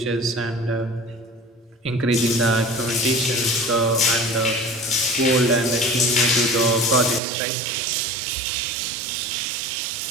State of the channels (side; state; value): left; drops out; at 7.2 s